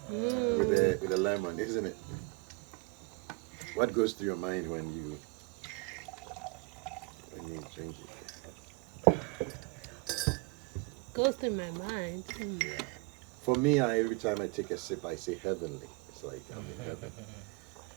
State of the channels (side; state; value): left; quieter; 26.3 dB